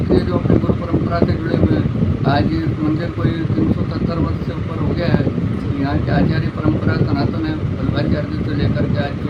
है, जो अपनी गुरु परंपरा से जुड़े हुए हैं। आज इस मंदिर को 370 वर्ष से ऊपर हो गया है। यहाँ की आचार्य परंपरा सनातन है। वल्लभाचार्य से लेकर के आज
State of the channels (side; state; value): both; identical; correlation 1.00